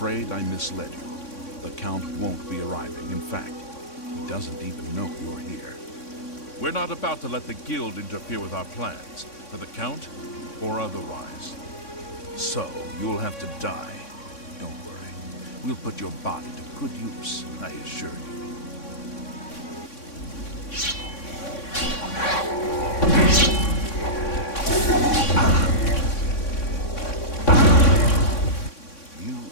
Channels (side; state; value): right; late; 3.6 ms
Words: I misled you. The Count won't be arriving. In fact, he doesn't even know you're here. We're not about to let the Guild interfere with our plans, for the Count or otherwise. So, you'll have to die. Don't worry. We'll put your body to good use, I assure you. You